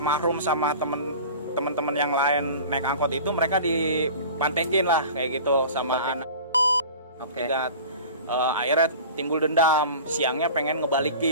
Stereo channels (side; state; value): both; inverted; correlation -0.39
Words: sama temen-temen yang lain naik angkot itu, mereka dipantekin lah kayak gitu sama anak. Oke. Akhirnya timbul dendam, siangnya pengen